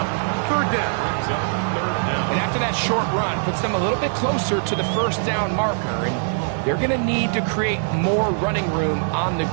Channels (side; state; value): left; silent; 60 dB below the other